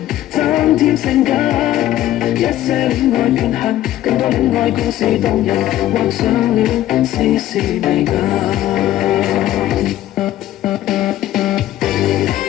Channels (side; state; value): right; quieter; 13.6 dB